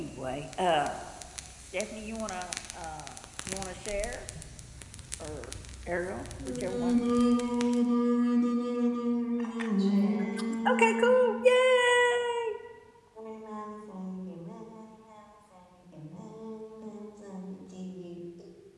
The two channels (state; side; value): identical; both; correlation 1.00